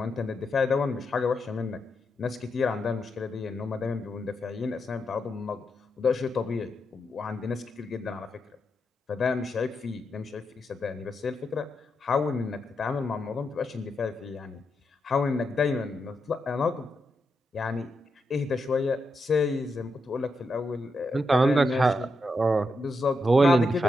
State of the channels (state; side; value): normal; both; correlation 0.84